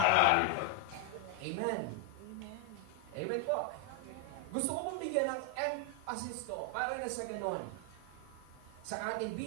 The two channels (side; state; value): both; different; correlation 0.01